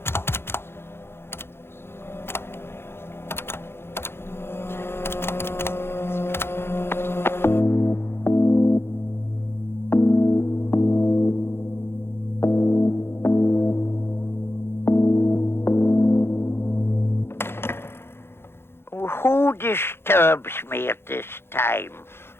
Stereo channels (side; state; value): right; late; 0.11 ms